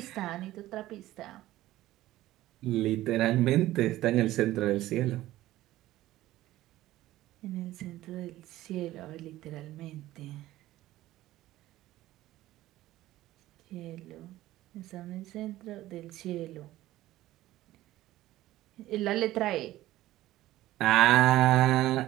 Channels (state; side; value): quieter; left; 15.6 dB